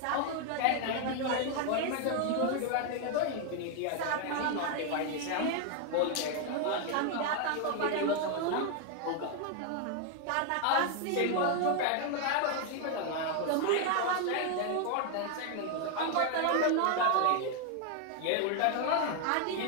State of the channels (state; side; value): different; both; correlation 0.01